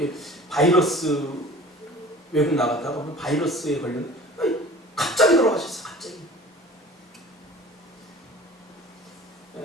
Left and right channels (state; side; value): normal; both; correlation 0.44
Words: 바이러스 외국 나갔다가 바이러스에 걸렸는데 갑자기 돌아가셨어요. 갑자기.